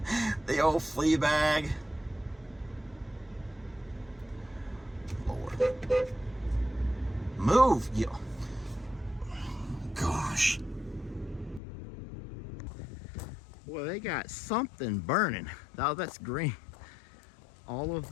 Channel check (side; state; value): right; drops out; at 11.6 s